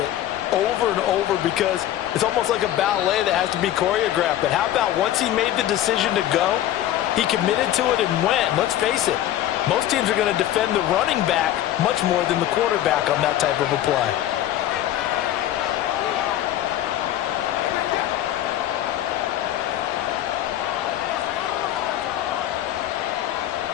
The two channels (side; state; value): right; quieter; 12.6 dB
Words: over and over because it's almost like a ballet that has to be choreographed. But how about once he made the decision to go, he committed to it and went. Let's face it, most teams are going to defend the running back much more than the quarterback on that type of a play.